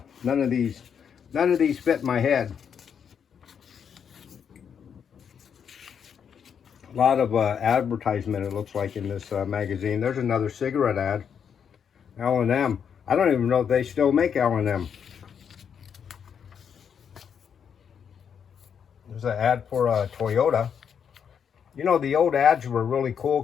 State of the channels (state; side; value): quieter; right; 7.5 dB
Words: none of these fit my head. A lot of advertisement, it looks like, in this magazine. There's another cigarette ad. L&M. I don't even know if they still make L&M. There's an ad for Toyota. You know, the old ads were really cool